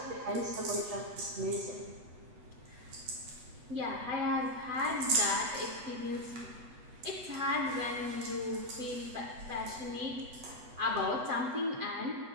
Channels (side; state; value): left; late; 8.1 ms